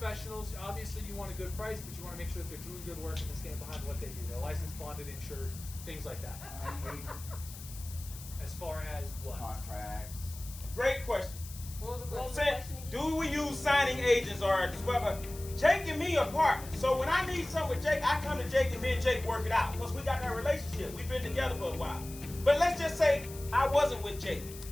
Obviously, you want a good price, but you want to make sure that they're doing good work and they stand behind what they do. They're licensed, bonded, insured, things like that. As far as what? Contracts. Great question. What was the Say, question again? do we use signing agents or whatever? Jake and me are partners. So when I need something with Jake, I come to Jake and me and Jake work it out because we got that relationship. We've been together for a while. But let's just say I wasn't with Jake.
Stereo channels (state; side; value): noise; left; hiss, 15 dB below the sound